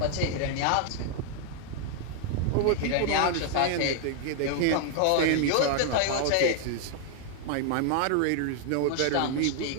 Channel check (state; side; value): different; both; correlation 0.00